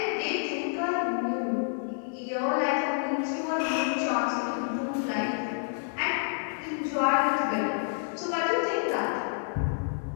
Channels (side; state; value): right; silent; digital silence